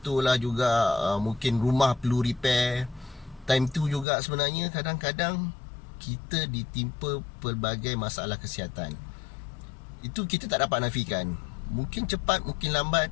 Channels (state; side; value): drops out; right; at 4.0 s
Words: lah juga mungkin rumah perlu repair, time tu juga sebenarnya kadang-kadang kita ditimpa pelbagai masalah kesihatan. Itu kita tak dapat nafikan, mungkin cepat, mungkin lambat,